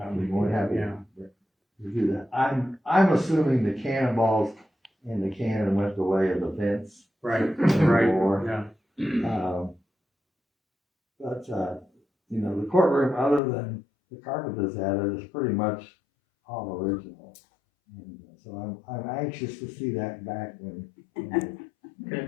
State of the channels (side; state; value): right; drops out; at 13.4 s